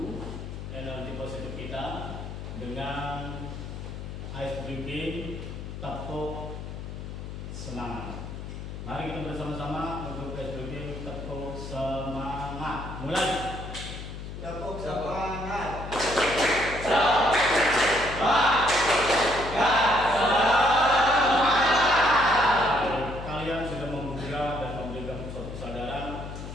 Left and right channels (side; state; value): left; noise; hum, 9 dB below the sound